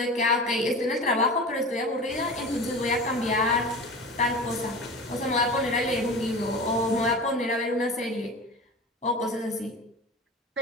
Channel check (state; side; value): normal; both; correlation 0.33